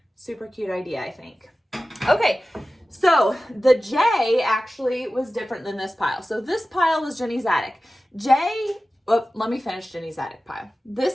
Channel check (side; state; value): both; normal; correlation 0.95